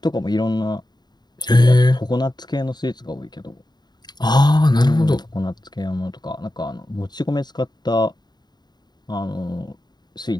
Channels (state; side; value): late; right; 0.20 ms